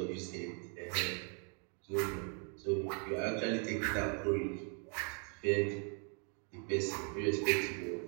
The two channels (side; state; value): left; quieter; 38.8 dB